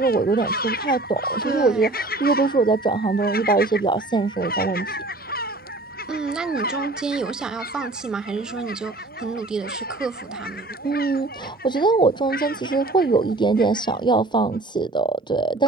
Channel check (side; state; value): left; quieter; 3.0 dB